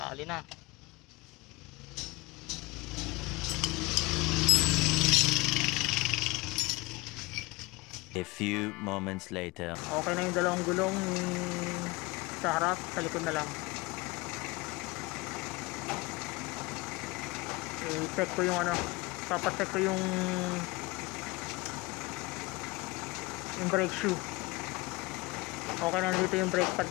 na. A few moments later. Okay na yung dalawang gulong sa harap, sa likod na lang. I-check ko yung papacheck ko yung brake shoe. Okay na dito yung brake pad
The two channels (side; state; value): right; quieter; 23.5 dB